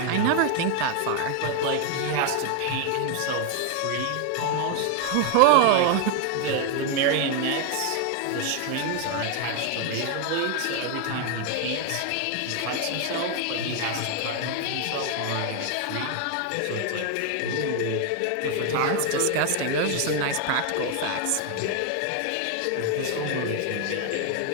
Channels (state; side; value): different; both; correlation 0.01